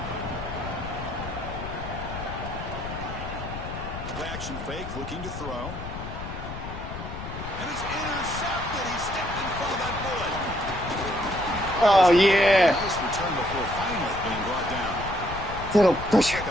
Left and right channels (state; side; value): noise; left; rumble, 8 dB below the sound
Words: Play action fake, looking to throw. And it's intercepted. He stepped in front of that bullet. Oh, yeah. Nice return before finally being brought down. Little Looks pressure.